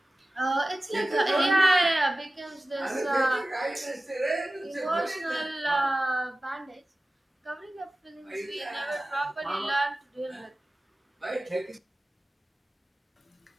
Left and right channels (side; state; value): both; normal; correlation 0.96